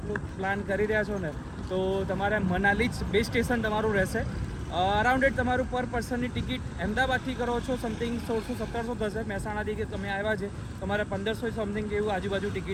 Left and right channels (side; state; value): both; identical; correlation 1.00